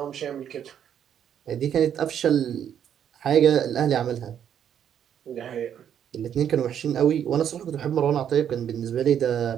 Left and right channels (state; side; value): quieter; left; 9.2 dB